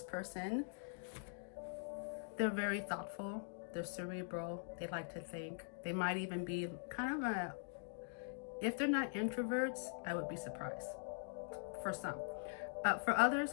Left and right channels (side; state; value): right; silent; digital silence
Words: person, they're very thoughtful, they're cerebral, they like to think. They might even be kind of a, if they're not introverts, I would be surprised. For some. For others,